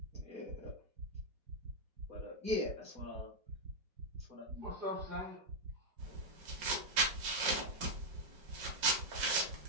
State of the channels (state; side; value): late; left; 5.3 ms